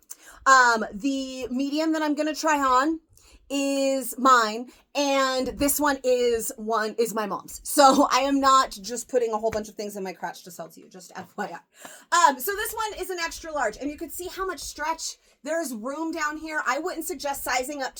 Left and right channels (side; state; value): both; identical; correlation 1.00